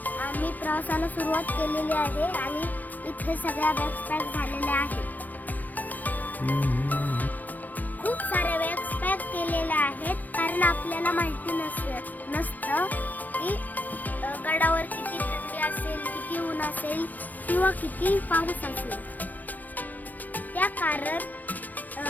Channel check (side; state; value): right; late; 0.085 ms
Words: प्रवासाला सुरुवात केलेली आहे आणि इथे सगळ्या बॅग्स पॅक झालेल्या आहेत. खूप सारे बॅग्स पॅक केलेल्या आहेत कारण आपल्याला माहिती नसतं की गडावर किती थंडी असेल, किती ऊन असेल किंवा किती पाऊस असेल. त्या कारण